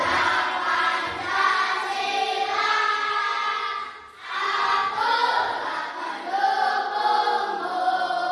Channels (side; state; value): both; identical; correlation 1.00